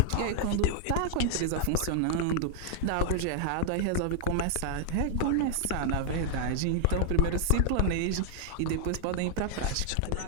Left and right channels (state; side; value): different; both; correlation 0.00